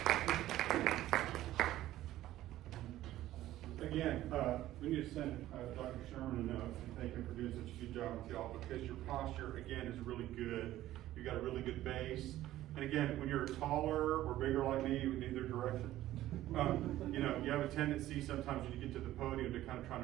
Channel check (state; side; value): quieter; left; 14.4 dB